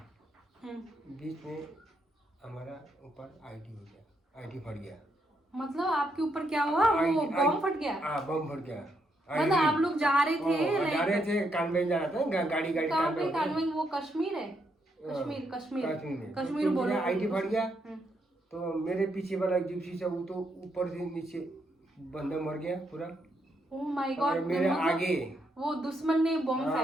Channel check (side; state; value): both; normal; correlation 0.78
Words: बीच में हमारा ऊपर आईडी हो गया, आईडी फट गया। मतलब आपके ऊपर क्या हुआ? वो बम फट गया? हाँ, बम फट गया। मतलब आप लोग जा रहे थे? जा रहे थे, कानवे जा रहा था, गाड़ी कानवे वो कश्मीर है? कश्मीर बोलो। आईडी फट गया तो मेरे पीछे वाला जिप्सी से वो तो ऊपर से नीचे बंदा मर गया पूरा। ओह माय गॉड। मेरे आगे वो दुश्मन ने बम